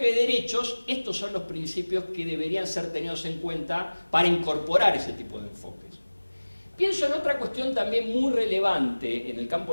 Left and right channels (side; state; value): both; inverted; correlation -1.00